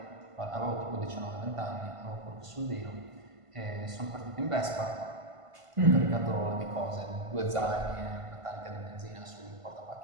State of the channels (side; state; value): left; late; 1.5 ms